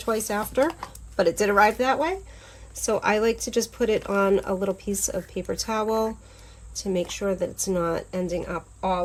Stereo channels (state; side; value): identical; both; correlation 1.00